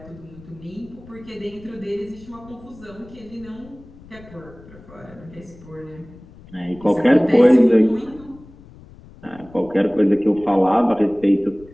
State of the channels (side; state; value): left; noise; rumble, 21 dB below the sound